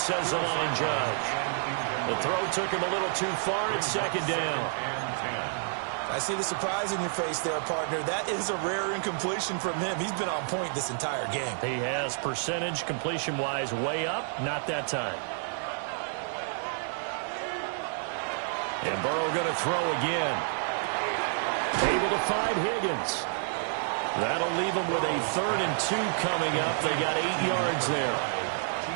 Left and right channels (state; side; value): silent; left; 58 dB below the other